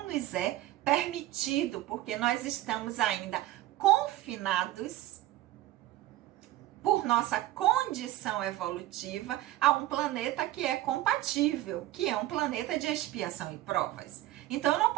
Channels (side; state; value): left; quieter; 15.3 dB